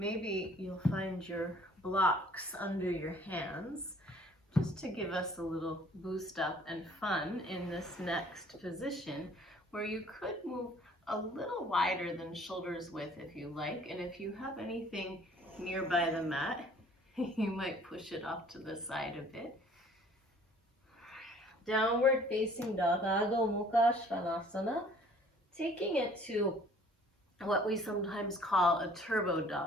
you'll find your blocks under your hands, just to give us a little boost up and fun in this next position, where you could move a little wider than shoulders width if you like, and if you have anything nearby the mat, you might push it off to the side a bit. Downward facing dog, Adho Mukha Svanasana, taking it to what we sometimes call a turbo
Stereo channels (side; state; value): both; normal; correlation 0.55